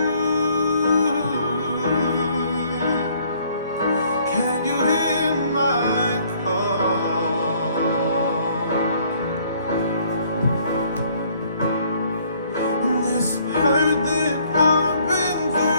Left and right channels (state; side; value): inverted; both; correlation -0.62